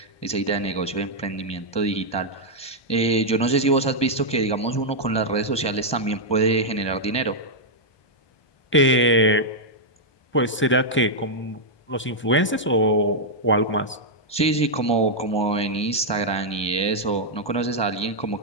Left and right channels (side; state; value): right; late; 1.2 ms